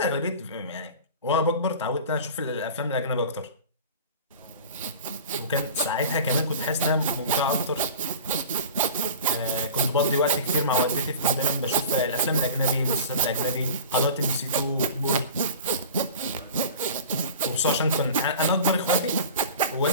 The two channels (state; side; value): inverted; both; correlation -0.38